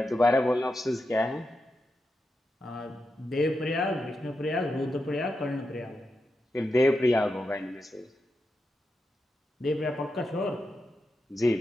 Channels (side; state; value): both; normal; correlation 0.87